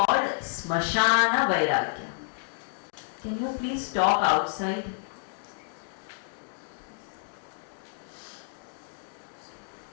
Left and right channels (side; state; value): right; silent; digital silence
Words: smashana vairagya. Can you please talk outside?